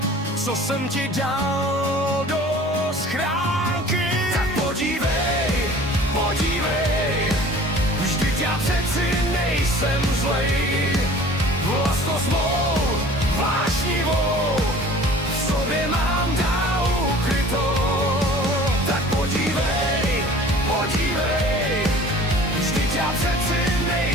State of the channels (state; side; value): normal; both; correlation 0.46